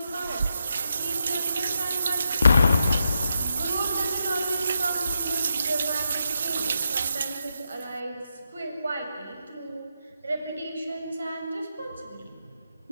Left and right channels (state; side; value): inverted; both; correlation -0.83